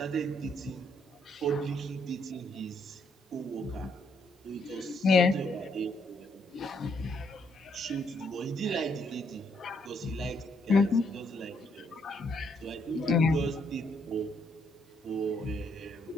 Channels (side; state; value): both; normal; correlation 0.72